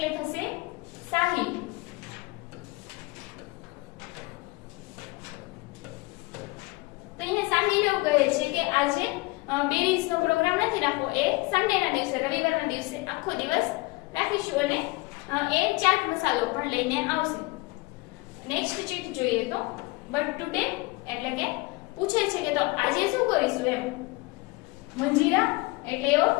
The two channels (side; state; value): right; quieter; 23.7 dB